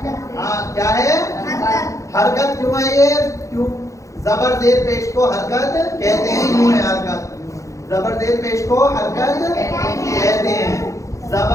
हाँ क्या है? हरकत। क्यों है ये? क्यों? ज़बर ज़ेर पेश को हरकत कहते हैं, यूं है हरकत। ज़बर ज़ेर पेश को हरकत कहते हैं,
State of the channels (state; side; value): late; right; 0.15 ms